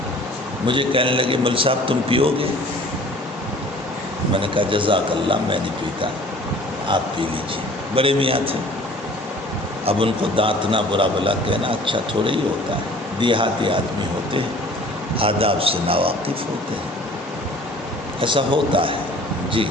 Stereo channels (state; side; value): normal; both; correlation 0.49